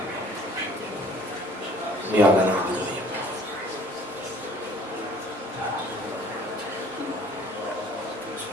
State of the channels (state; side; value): normal; both; correlation 0.53